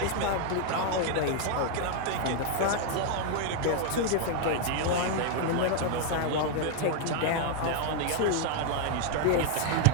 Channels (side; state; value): both; different; correlation 0.00